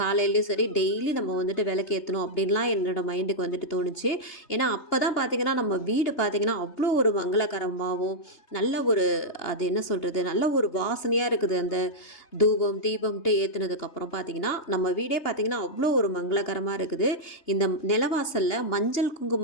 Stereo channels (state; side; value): late; right; 2.8 ms